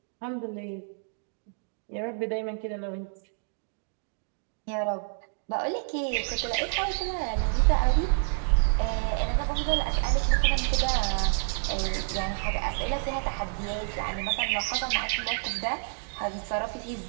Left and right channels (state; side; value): silent; left; 57 dB below the other